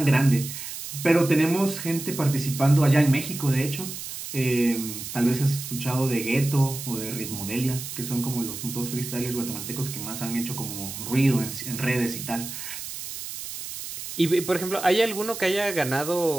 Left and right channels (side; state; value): right; noise; hiss, 8 dB below the sound